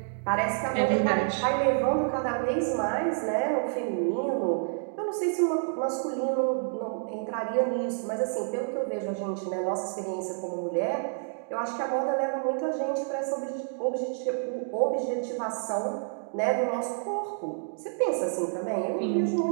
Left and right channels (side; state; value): left; silent; digital silence